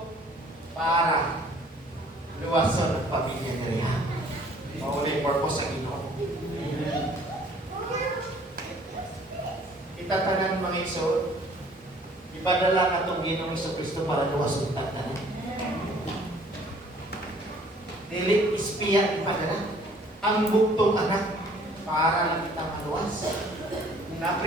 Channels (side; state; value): both; normal; correlation 0.56